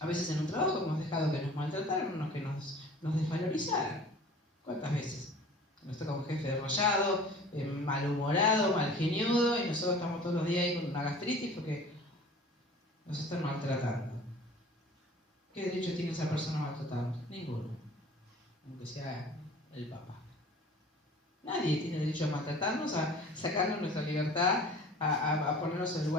veces en un trabajo hemos dejado que nos maltrataran, que nos desvalorizaran. ¿Cuántas veces? Nos toca un jefe derrollado, malhumorado, malgeniudo, y nosotros estamos todos los días ahí con una gastritis porque nos están maltratando. ¿Qué derecho tiene esa persona a maltratarnos? Ninguno. Aunque sea el papá. Nadie tiene derecho a maltratarnos, a sacarnos nuestra libertad, a ponernos en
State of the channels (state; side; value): normal; both; correlation 0.45